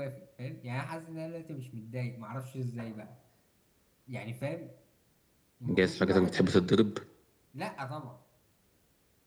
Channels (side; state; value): both; identical; correlation 1.00